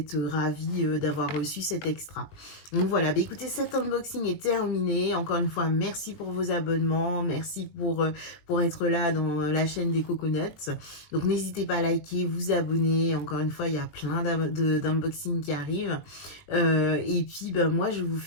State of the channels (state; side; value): late; right; 20 ms